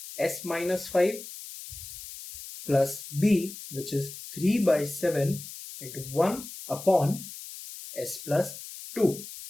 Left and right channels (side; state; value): left; noise; hiss, 12 dB below the sound